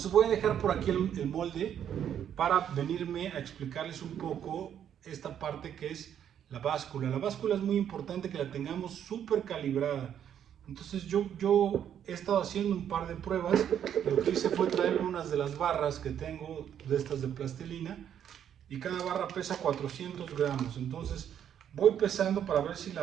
voy a dejar por aquí el molde para venirme a explicarles un poco esta parte que es la báscula. La báscula es muy importante que la tengamos súper calibrada. Entonces yo he estado haciendo un par de pruebas. Lo que hice fue traer unas de las barras que tengo, de estas de plastilina, y cada barra pesa 400 gramos. Entonces voy pesando para ver si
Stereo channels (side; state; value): left; quieter; 9.4 dB